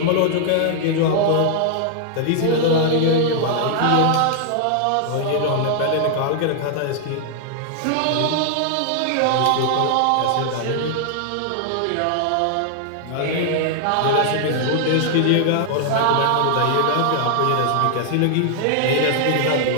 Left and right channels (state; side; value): different; both; correlation -0.01